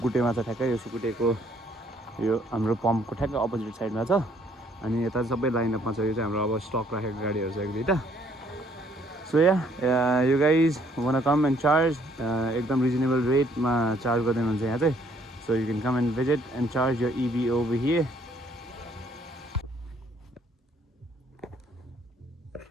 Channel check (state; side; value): normal; both; correlation 0.64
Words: छ ठ्याक्कै। यो सुकुटेको यो हाम्रो पम्पको ठ्याक्कै अपोजिट साइडमा छ। अनि यता सबै लाइनअपमा छ। यो चाहिँ हाम्रो अब स्टक राखेको गाडीहरू छ 1-2टा। So you guys wanna come and charge, एकदम रिजनेबल रेटमा चार्ज गरिदिनुहुन्छ यहाँ चाहिँ। So you can come and visit and charge your EV over here.